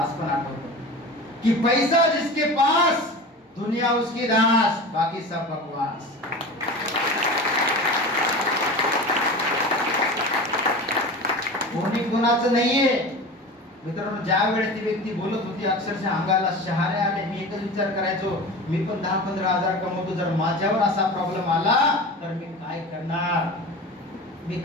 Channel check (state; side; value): normal; both; correlation 0.32